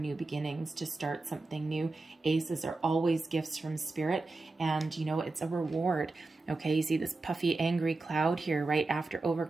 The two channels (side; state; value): left; quieter; 3.4 dB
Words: beginnings, to start something new. Aces are always gifts from Spirit, and you know, it's a reward. Okay, you see this puffy, angry cloud here, right after